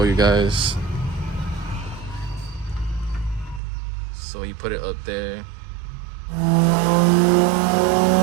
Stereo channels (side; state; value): left; drops out; at 3.6 s